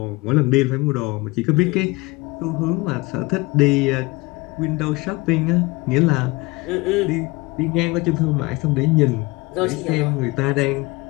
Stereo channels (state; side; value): quieter; right; 23.4 dB